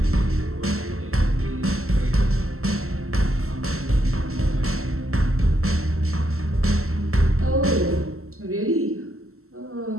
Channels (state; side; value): late; left; 0.63 ms